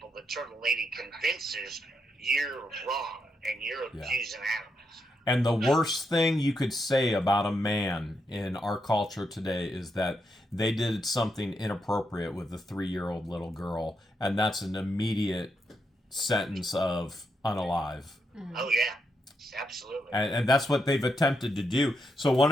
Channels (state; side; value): normal; both; correlation 0.82